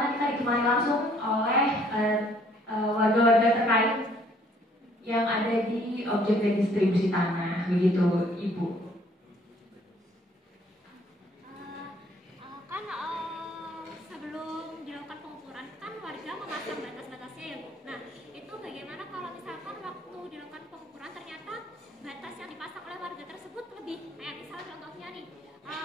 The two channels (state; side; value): normal; both; correlation 0.61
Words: kita ditemani langsung oleh warga-warga terkait yang ada di objek redistribusi tanah, begitu Ibu. Sebelum dilakukan pengukuran kan warga memasang batas-batasnya ya Bu. Nah, itu bagaimana kalau misalkan waktu dilakukan pengukuran ternyata batas yang dipasang oleh warga tersebut lebih, kayak misalnya contohnya nih